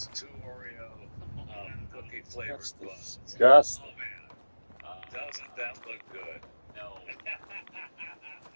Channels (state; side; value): inverted; both; correlation -1.00